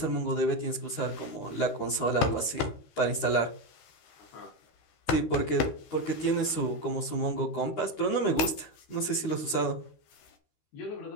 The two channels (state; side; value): late; right; 13 ms